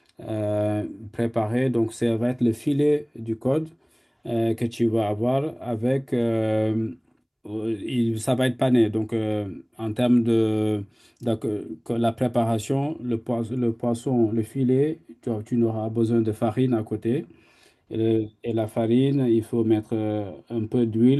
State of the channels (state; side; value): identical; both; correlation 1.00